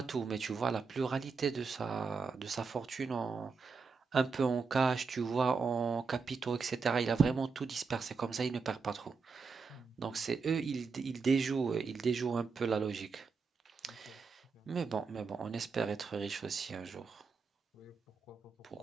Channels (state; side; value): quieter; left; 5.0 dB